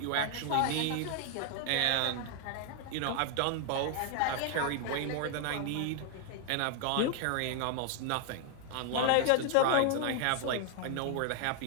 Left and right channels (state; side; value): different; both; correlation 0.00